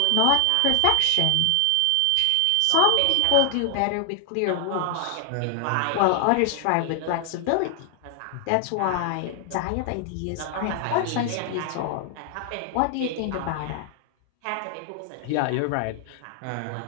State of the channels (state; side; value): different; both; correlation 0.00